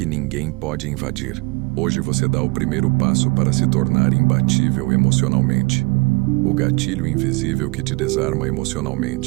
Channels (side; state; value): left; quieter; 27.3 dB